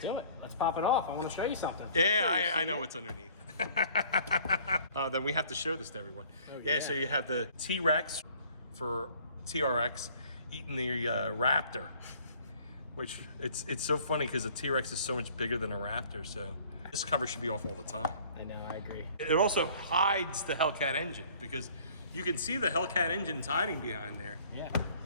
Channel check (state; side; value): inverted; both; correlation -0.54